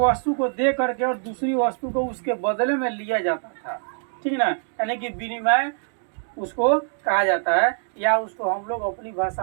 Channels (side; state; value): left; silent; digital silence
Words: को दे करके और दूसरी वस्तु को उसके बदले में लिया जाता था। ठीक ना। यानी कि विनिमय उसको कहा जाता है, या उसको हम लोग अपनी